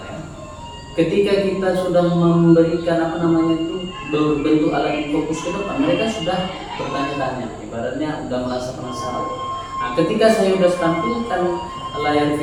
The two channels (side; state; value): both; identical; correlation 1.00